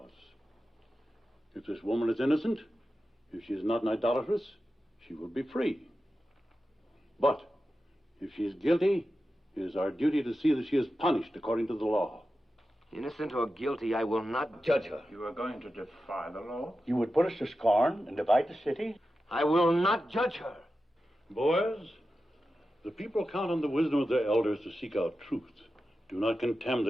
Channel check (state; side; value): normal; both; correlation 0.92